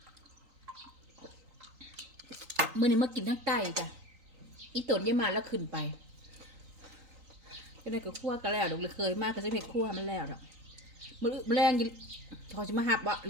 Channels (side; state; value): left; late; 3.9 ms